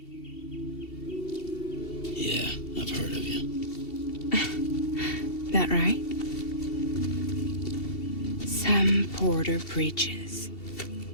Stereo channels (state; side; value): late; right; 2.7 ms